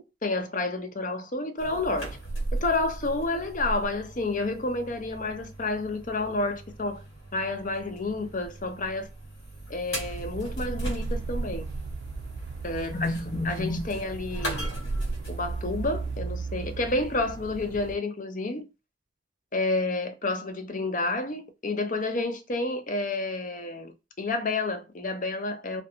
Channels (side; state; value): both; normal; correlation 0.17